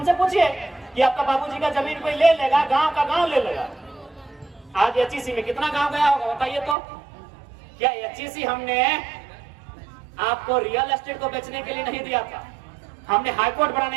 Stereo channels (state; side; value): drops out; left; at 6.8 s